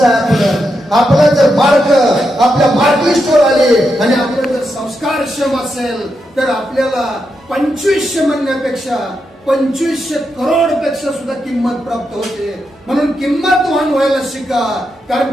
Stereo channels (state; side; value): normal; both; correlation 0.84